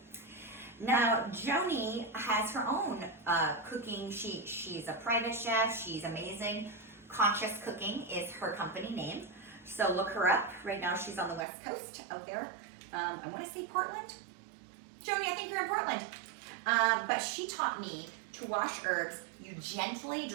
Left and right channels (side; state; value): left; drops out; at 11.5 s